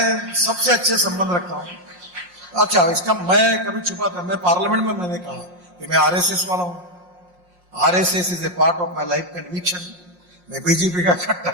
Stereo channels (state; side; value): late; left; 5.6 ms